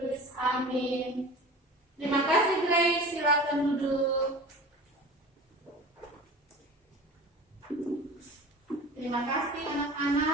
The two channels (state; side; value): normal; both; correlation 0.37